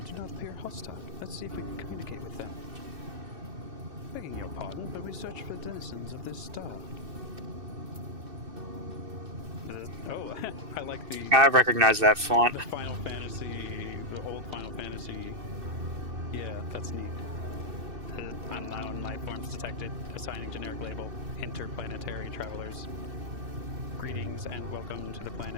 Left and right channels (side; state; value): left; late; 2.6 ms